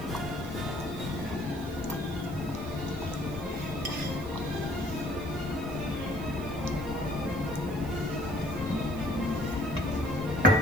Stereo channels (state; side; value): noise; right; hiss, 21 dB below the sound